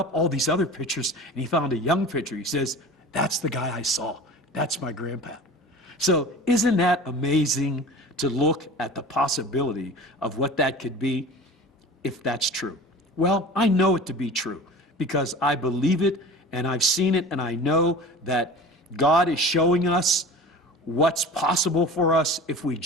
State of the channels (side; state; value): both; normal; correlation 0.38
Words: all these other pictures, and he found a young picture. He says, "That's the guy I saw. That's my grandpa." So isn't that amazing to look at the possibility of what that could be if that's true? Well, I know it to be true because I believe it and I've seen it, and I know that God is showing us what's possible for us if we